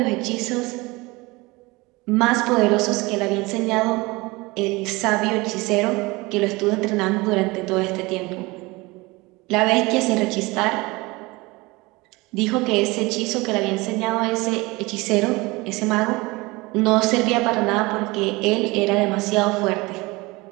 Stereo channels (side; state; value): left; quieter; 23.3 dB